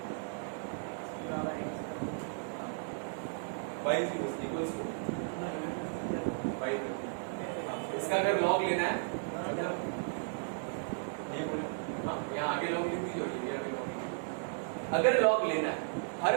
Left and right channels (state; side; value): silent; left; digital silence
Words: इसका अगर लॉग लेना है मतलब ये बोले, हाँ यहाँ आगे लॉग लिख दीजिए और ये आगे लॉग। अगर लॉग लेना है हर